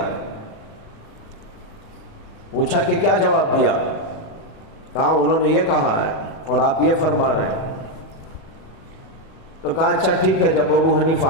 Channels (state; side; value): late; right; 37 ms